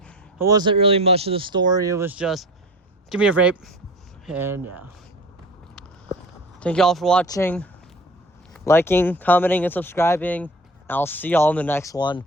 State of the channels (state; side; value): normal; both; correlation 0.38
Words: wasn't really much of the story. It was just, give me a vape. And yeah. Thank you all for watching, liking, commenting, and subscribing. I'll see y'all in the next one.